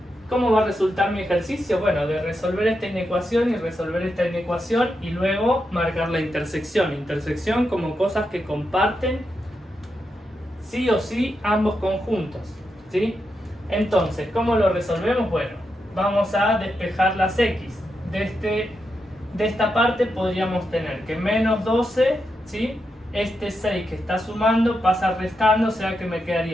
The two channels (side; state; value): both; normal; correlation 0.85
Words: ¿cómo va a resultar mi ejercicio? Bueno, de resolver esta inecuación y resolver esta inecuación y luego marcar la intersección. Intersección como cosas que comparten sí o sí ambos conjuntos, ¿sí? Entonces, ¿cómo lo resolvemos? Bueno, vamos a despejar las x. De esta parte podríamos tener que menos 12, ¿sí? Este 6 que está sumando pasa restando, o sea que me